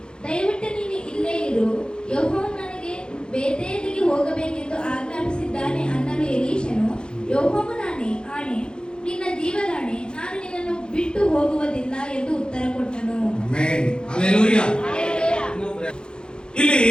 ದಯವಿಟ್ಟು ನೀನು ಇಲ್ಲೇ ಇರು, ಯೆಹೋವನು ನನಗೆ ಬೇತೇಲಿಗೆ ಹೋಗಬೇಕೆಂದು ಆಜ್ಞಾಪಿಸಿದ್ದಾನೆ ಅನ್ನಲು ಎಲೀಷನು, ಯೆಹೋವನಾಣೆ, ಆಣೆ, ನಿನ್ನ ಜೀವದಾಣೆ, ನಾನು ನಿನ್ನನ್ನು ಬಿಟ್ಟು ಹೋಗುವುದಿಲ್ಲ ಎಂದು ಉತ್ತರ ಕೊಟ್ಟನು. ಆಮೆನ್. ಹಲ್ಲೆಲೂಯಾ. ಇಲ್ಲಿ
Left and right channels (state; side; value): late; right; 0.049 ms